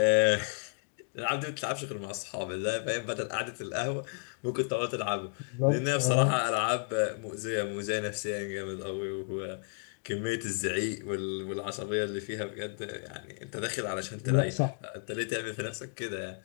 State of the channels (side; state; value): right; silent; digital silence